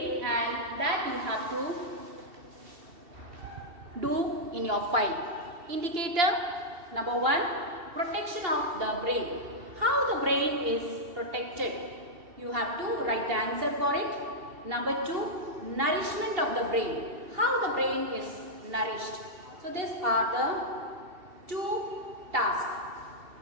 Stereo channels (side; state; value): left; late; 2.7 ms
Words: and that you have to do in your file. Indicator number 1, protection of the brain. How the brain is protected? You have to write the answer for it. Number 2, nourishment of the brain. How the brain is nourished. So these are the 2 tasks.